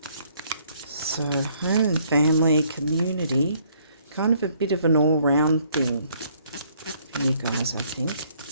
So home and family, community, kind of a bit of an all-round thing for you guys, I think.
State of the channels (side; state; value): both; inverted; correlation -0.64